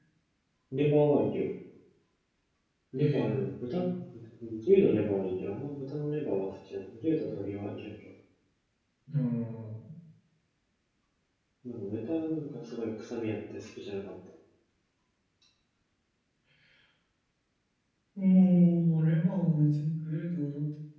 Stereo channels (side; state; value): both; identical; correlation 1.00